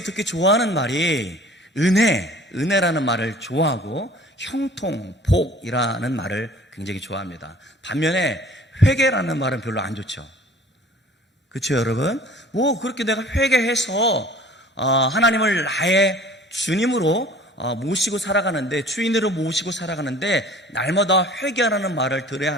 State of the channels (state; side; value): normal; both; correlation 0.48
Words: 특히 좋아하는 말이 은혜라는 말을 좋아하고 형통, 복이라는 말을 굉장히 좋아합니다. 반면에 회개라는 말은 별로 안 좋죠. 그렇죠, 여러분? 그렇게 내가 회개해서 하나님을 나의 주님으로 모시고 살아가는데, 주인으로 모시고 살아가는데 날마다 회개하라는 말을 들어야